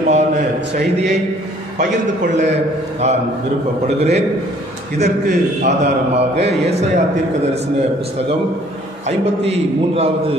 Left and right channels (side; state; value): both; normal; correlation 0.58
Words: செய்தியை பகிர்ந்து கொள்ள நான் விருப்பப்படுகிறேன். இதற்கு ஆதாரமாக ஏசாயா தீர்க்கதரிசன புஸ்தகம் 53வது